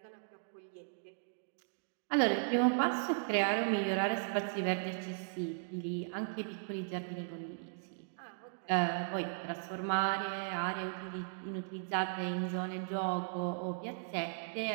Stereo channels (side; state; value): left; silent; digital silence